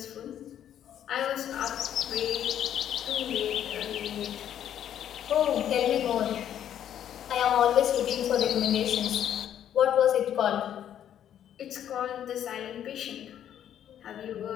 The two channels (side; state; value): right; quieter; 10.2 dB